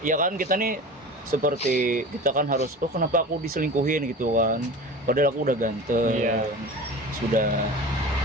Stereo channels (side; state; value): both; normal; correlation 0.35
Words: ya kan kita nih seperti kita kan harus, oh kenapa aku diselingkuhin gitu kan, padahal aku udah ganteng. Iya. sudah